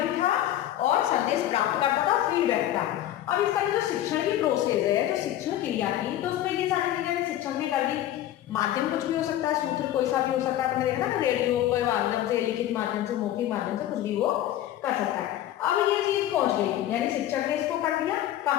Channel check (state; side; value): quieter; right; 12.8 dB